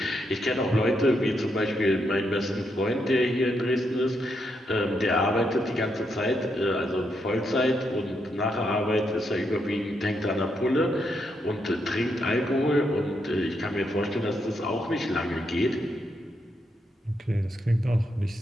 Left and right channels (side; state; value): both; normal; correlation 0.80